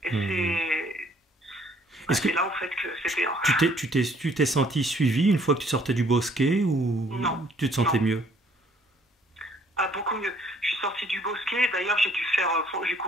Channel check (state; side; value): normal; both; correlation 0.62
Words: Et c'est là en fait que c'était... Tu t'es senti suivi une fois que tu sortais du bosquet ou non, tu te sentais mieux? Beaucoup mieux. Je suis sortie du bosquet, d'ailleurs j'ai